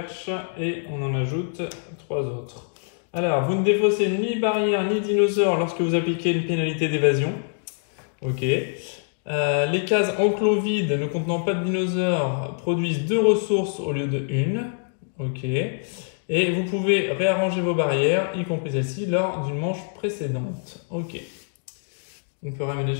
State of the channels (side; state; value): right; silent; digital silence